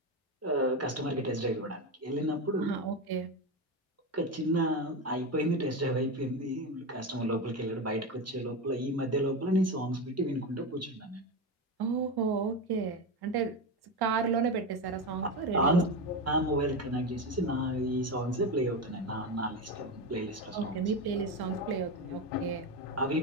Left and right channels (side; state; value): both; normal; correlation 0.17